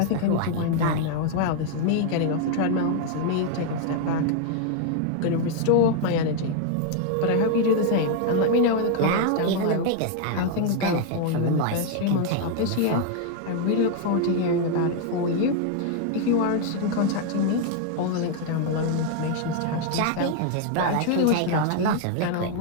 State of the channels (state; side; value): different; both; correlation 0.00